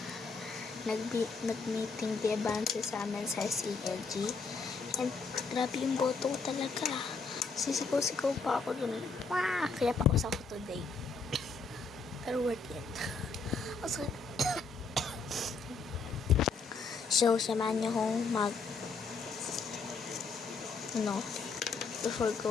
nag-meeting di advance sa amin sa CLG. And grabe yung boto ko talaga. Sisigaw-sigaw pa ako dun. Kaya paus ako today. Pero worth it. So, samahan niyo akong before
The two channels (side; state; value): right; quieter; 4.4 dB